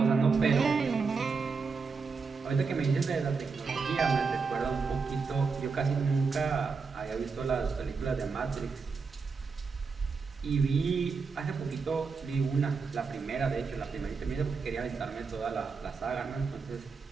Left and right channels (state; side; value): quieter; left; 4.9 dB